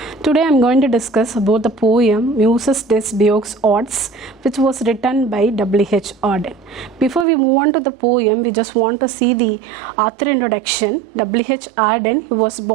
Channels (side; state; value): left; drops out; at 7.2 s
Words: Today I'm going to discuss about the poem Muses Des Beaux Arts, which was written by W.H.Auden. Before we move on to the poem, we just want to see the author introduction. W.H.Auden, he was